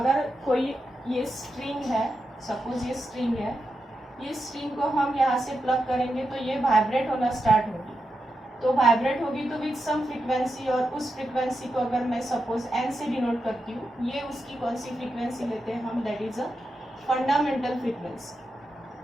कोई ये स्ट्रिंग है, सपोज ये स्ट्रिंग है, ये स्ट्रिंग को हम यहाँ से प्लग करेंगे तो ये वाइब्रेट होना स्टार्ट होगी। तो वाइब्रेट होगी तो विद सम फ्रीक्वेंसी, और उस फ्रीक्वेंसी को अगर मैं सपोज एन से डिनोट करती हूँ, ये उसकी कौन सी फ्रीक्वेंसी लेते हैं हम? That is a fundamental frequency.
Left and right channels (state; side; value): normal; both; correlation 0.87